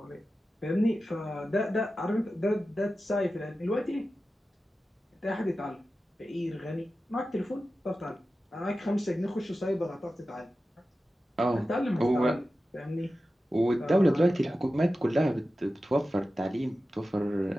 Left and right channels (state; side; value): normal; both; correlation 0.93